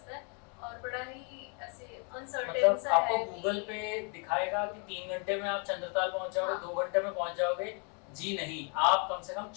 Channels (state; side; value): quieter; right; 37.7 dB